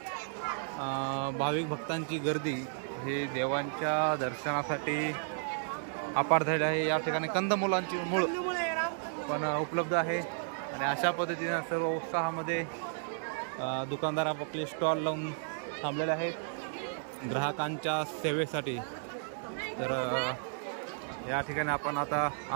भाविक भक्तांची गर्दी हे देवांच्या दर्शनासाठी अपार झाली आहे। या ठिकाणी कंदमुलांची मूळ पण उपलब्ध आहे आणि अशा पद्धतीने सर्व उत्साहामध्ये दुकानदार आपले स्टॉल लावून थांबलेले आहेत ग्राहकांच्या सेवेसाठी। तर या ठिकाणी आपण आता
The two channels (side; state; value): left; silent; digital silence